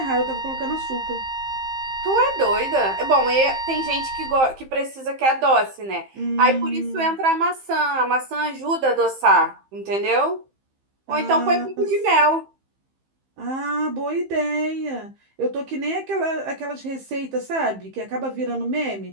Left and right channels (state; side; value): late; left; 15 ms